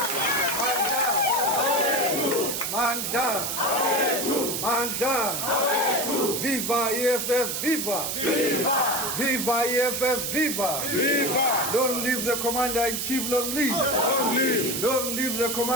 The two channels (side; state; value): right; noise; hiss, 2 dB below the sound